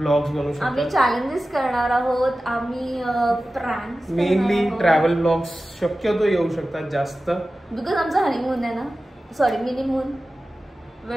बनवू शकतो. आम्ही चॅलेंजेस करणार आहोत. आम्ही प्रँक्स, मेनली ट्रॅव्हल ब्लॉग्स शक्यतो येऊ शकतात जास्त, बिकॉज आमचा हनीमून आहे ना. Sorry, minimoon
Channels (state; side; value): normal; both; correlation 0.95